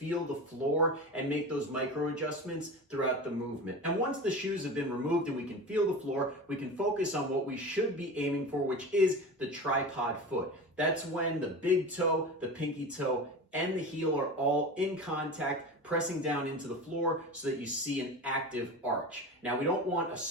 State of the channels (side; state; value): both; normal; correlation 0.30